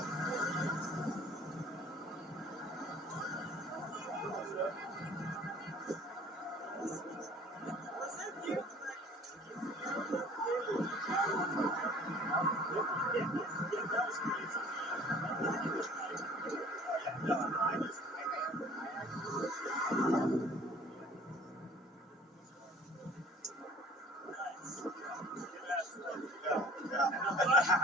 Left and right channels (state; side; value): normal; both; correlation 0.50